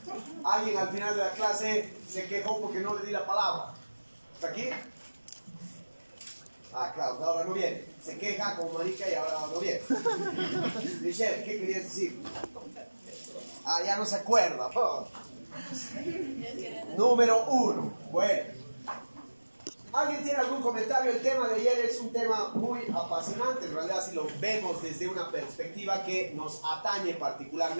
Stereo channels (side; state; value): both; inverted; correlation -1.00